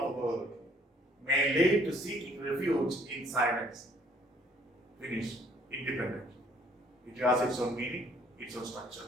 the world may lead to seeking refuge in silence. Finish. Independent. It has its own meaning, its own structure.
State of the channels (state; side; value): normal; both; correlation 0.61